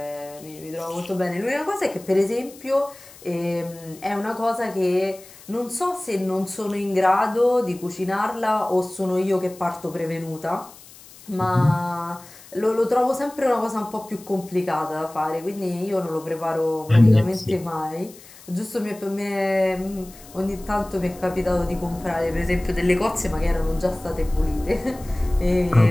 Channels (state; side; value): noise; left; hiss, 21 dB below the sound